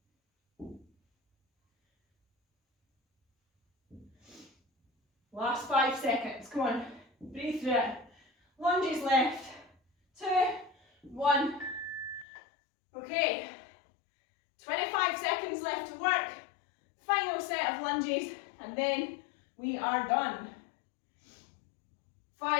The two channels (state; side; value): drops out; right; at 12.2 s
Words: Last 5 seconds. Come on. Breathe through it. Lunges left. 2, 1. Okay. 25 seconds left to work. Final set of lunges, and then we are done.